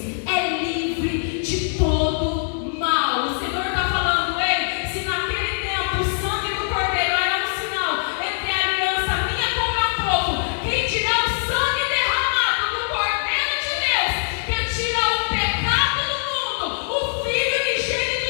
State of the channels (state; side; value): silent; right; digital silence